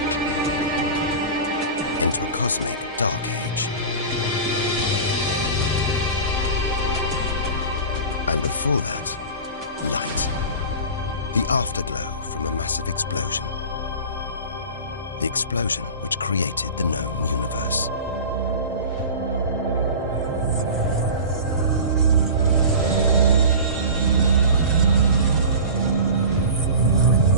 Into a cosmic dark age. And before that, light. The afterglow from a massive explosion. The explosion which created the known universe.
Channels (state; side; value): inverted; both; correlation -0.34